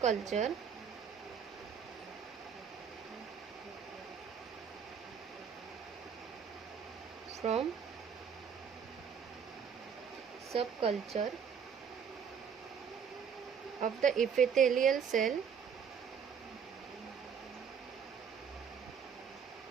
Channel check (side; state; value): left; quieter; 7.0 dB